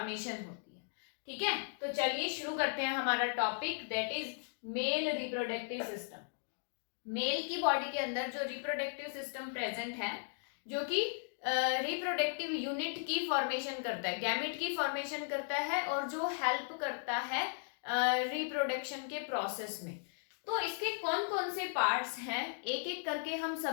होती है। ठीक है, तो चलिए शुरू करते हैं हमारा topic, that is male reproductive system. Male की बॉडी के अंदर जो रिप्रोडक्टिव सिस्टम प्रेजेंट है, जो कि रिप्रोडक्टिव यूनिट की फॉर्मेशन करता है, गैमेट की फॉर्मेशन करता है, और जो हेल्प करता है रिप्रोडक्शन के प्रोसेस में। तो इसके कौन कौन से पार्ट्स हैं, एक एक करके हम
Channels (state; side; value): silent; right; digital silence